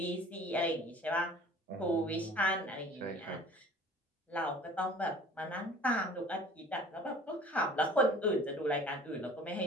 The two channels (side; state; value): both; normal; correlation 0.47